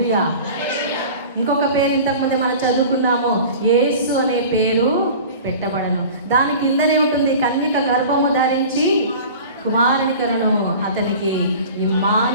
ఇంకొక పేరు ఇంతకుముందే మనం చదువుకున్నాము, యేసు అనే పేరు పెట్టబడను. దాని కిందనే ఉంటుంది, కన్యక గర్భము ధరించి కుమారుని కరును, అతనికి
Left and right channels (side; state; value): both; inverted; correlation -0.39